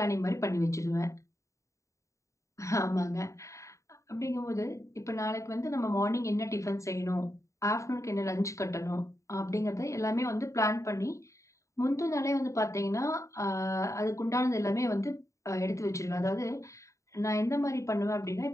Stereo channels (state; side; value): late; right; 0.15 ms